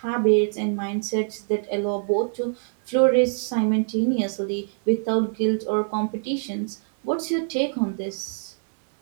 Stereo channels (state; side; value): silent; left; 62 dB below the other